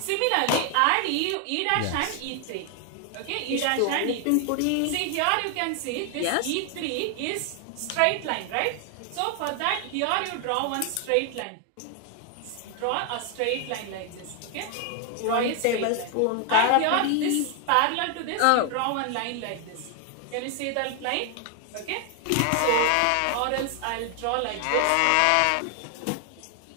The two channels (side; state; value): both; different; correlation 0.00